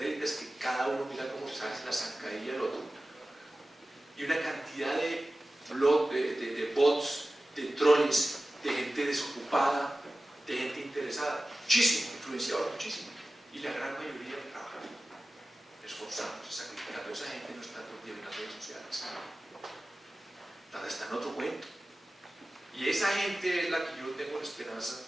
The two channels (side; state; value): both; normal; correlation 0.96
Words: que cada uno mira cómo se hace la zancadilla del otro. Y una cantidad de bots, de trolls, de gente desocupada, de gente interesada. Muchísimo, influenciador, muchísimo. Y la gran mayoría trabaja esforzándose, sacrificando. Esa gente no está todo el día en las redes sociales. Está en otro cuento. Y esa gente es la que yo tengo la esperanza